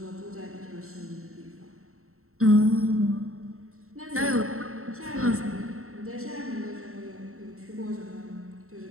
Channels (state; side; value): late; left; 0.63 ms